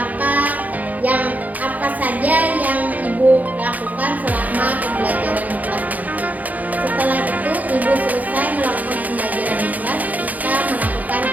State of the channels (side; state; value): left; late; 0.078 ms